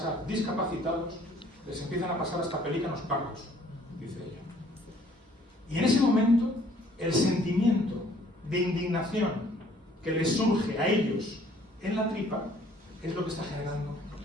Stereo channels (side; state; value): both; normal; correlation 0.59